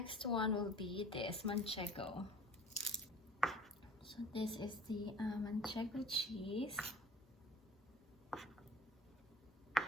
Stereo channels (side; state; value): both; normal; correlation 0.46